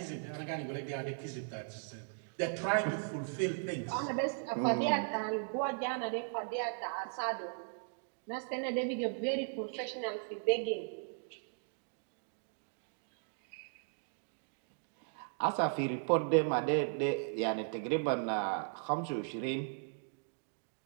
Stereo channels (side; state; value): left; silent; digital silence